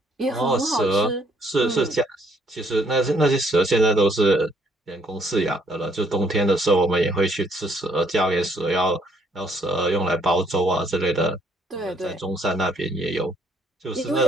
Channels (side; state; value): both; normal; correlation 0.67